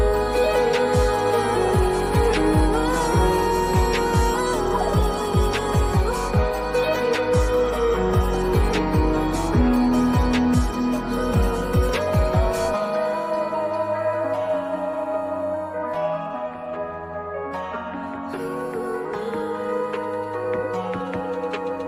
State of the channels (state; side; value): identical; both; correlation 1.00